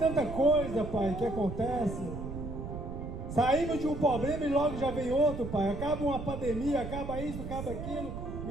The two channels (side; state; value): right; noise; rumble, 7 dB below the sound